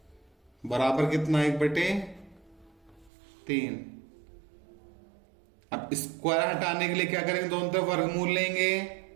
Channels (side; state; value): left; drops out; at 3.1 s